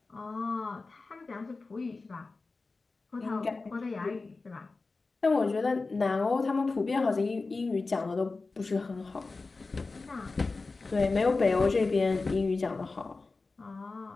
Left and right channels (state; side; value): quieter; right; 3.8 dB